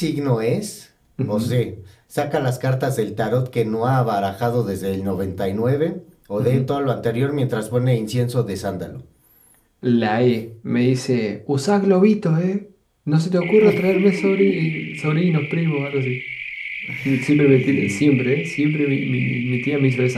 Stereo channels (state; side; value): identical; both; correlation 1.00